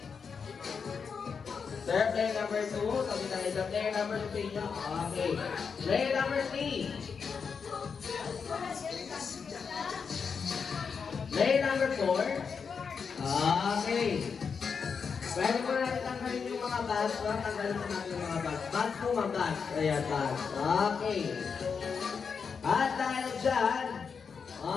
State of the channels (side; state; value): right; quieter; 5.9 dB